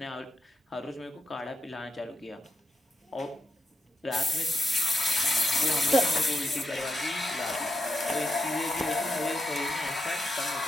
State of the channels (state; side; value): normal; both; correlation 0.84